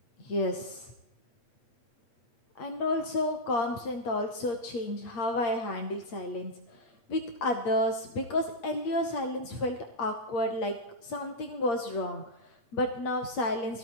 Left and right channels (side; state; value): right; late; 8.6 ms